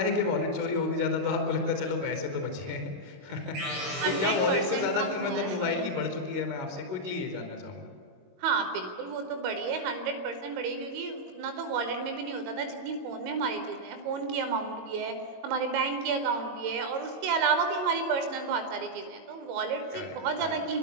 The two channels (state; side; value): late; left; 22 ms